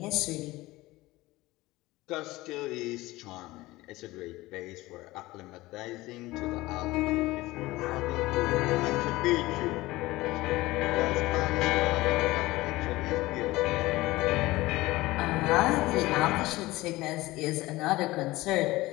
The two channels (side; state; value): right; quieter; 19.2 dB